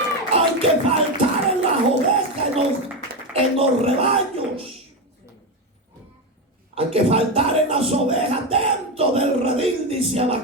Hay que faltar en las ovejas, en los rebaños. Hay que faltar en las ovejas dentro del redil, dice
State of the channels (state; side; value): normal; both; correlation 0.13